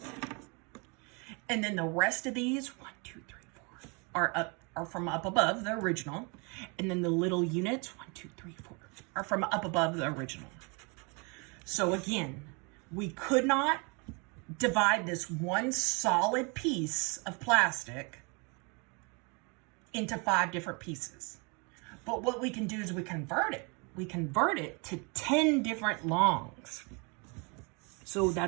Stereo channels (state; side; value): quieter; left; 32.0 dB